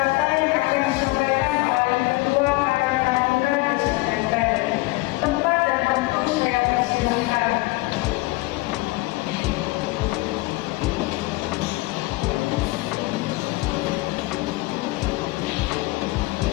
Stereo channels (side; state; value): right; quieter; 21.9 dB